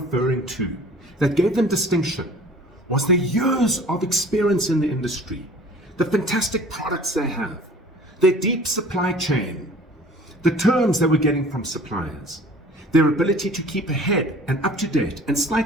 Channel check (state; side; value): normal; both; correlation 0.47